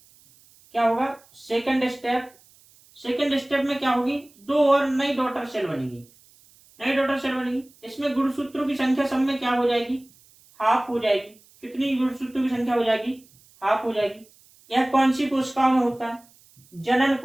क्या होगा? सेकंड स्टेप में क्या होगी? 2 और नई डॉटर सेल बनेगी। इसमें गुणसूत्रों की संख्या सब में क्या हो जाएगी? हाफ हो जाएगी। कितनी गुणसूत्रों की संख्या हो जाएगी? हाफ हो जाएगी। यह कौन सी कोशिकाओं में होता है? जनन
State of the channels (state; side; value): noise; right; hiss, 28 dB below the sound